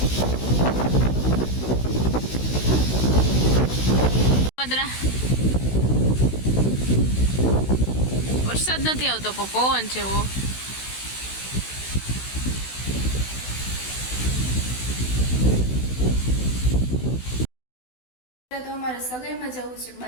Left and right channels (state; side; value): late; right; 16 ms